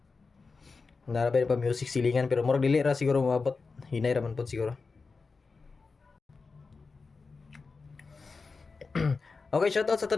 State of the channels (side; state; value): right; quieter; 4.4 dB